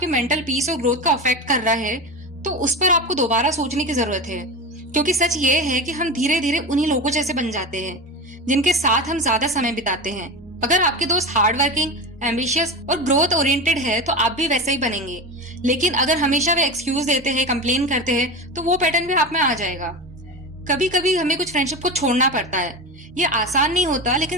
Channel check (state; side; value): normal; both; correlation 0.24